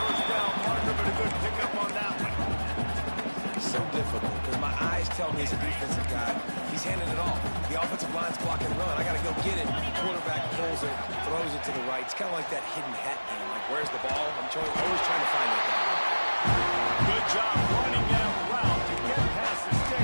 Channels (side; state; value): both; inverted; correlation -1.00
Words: down marker, but a good pickup on that one. So difficult, because my eyes tell me as a defensive guy, he's handing it off. The offensive line's block and run. I got to go get it. Quarterback pulls it, throws it to the right. It's kind of like that hidden hat game. Like, where's the ball? I'm always trying to find it. Good job running that route to get past the